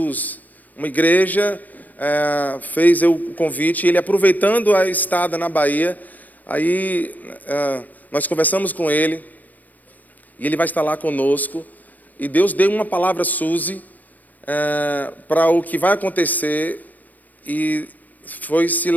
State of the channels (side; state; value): right; late; 0.082 ms